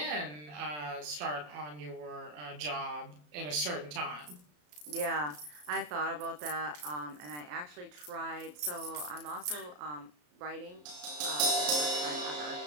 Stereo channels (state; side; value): late; left; 33 ms